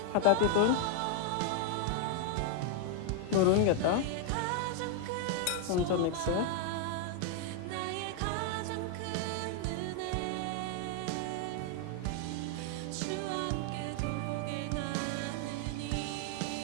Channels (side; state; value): both; different; correlation 0.00